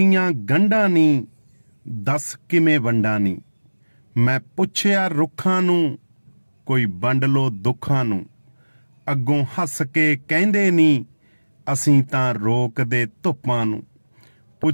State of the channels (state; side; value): inverted; both; correlation -1.00